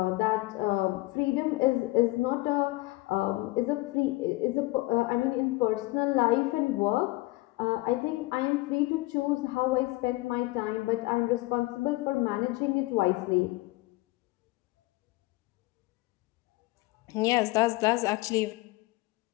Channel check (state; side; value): quieter; right; 20.8 dB